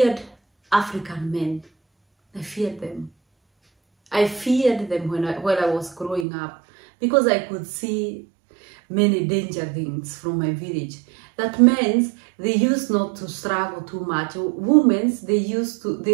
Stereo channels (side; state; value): left; drops out; at 6.2 s